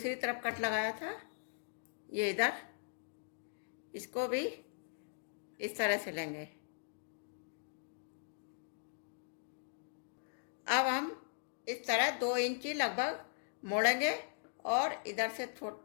तरफ कट लगाया था, ये इधर, इसको भी इस तरह सिलेंगे। इस तरह 2 इंची लगभग मोड़ेंगे और इधर से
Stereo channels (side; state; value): right; silent; digital silence